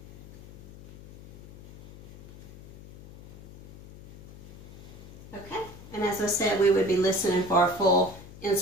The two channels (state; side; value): noise; left; hum, 18 dB below the sound